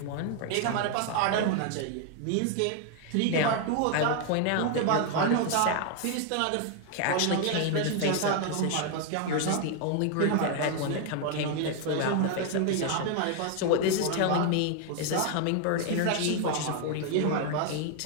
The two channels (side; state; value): both; different; correlation 0.00